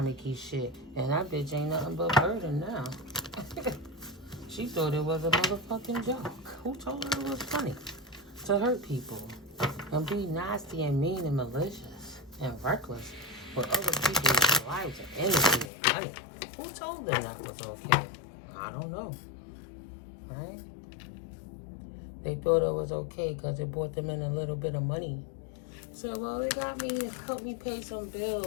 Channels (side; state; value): right; drops out; at 15.7 s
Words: shit. And that bitch ain't nothing but burden now. She thought it was a motherfucking joke. Who told her it was funny to hurt people and be nasty and mean and malicious and reckless with other people's lives and energy and money? Who told them that was okay? I don't know. Right? They thought it was okay because it brought them in a little bit of money. So, well, it got me, it helped me pay some